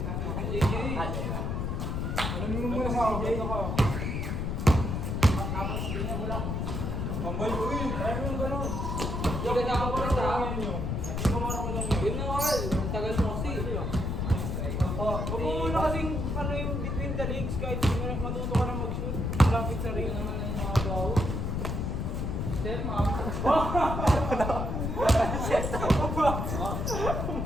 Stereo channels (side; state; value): left; noise; rumble, 1 dB below the sound